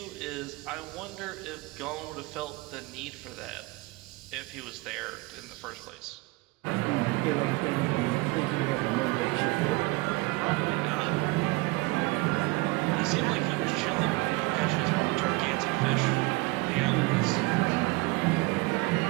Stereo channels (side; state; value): left; quieter; 24.2 dB